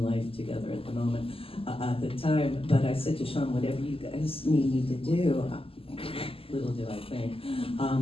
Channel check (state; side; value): late; right; 0.27 ms